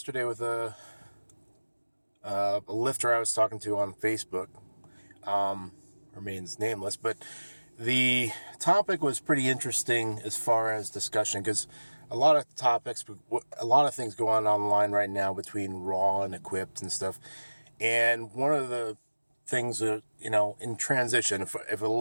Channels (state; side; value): inverted; both; correlation -1.00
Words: with a lifter I was talking to on Facebook. Remains nameless, but the topic was pretty interesting as far as discussion because a lot of topics, a lot of things go on online right now between raw and equipped and stuff. And one of the things that, in transition, if a